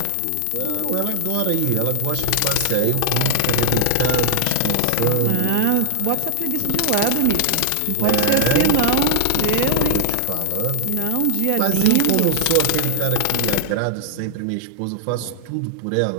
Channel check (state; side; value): different; both; correlation 0.00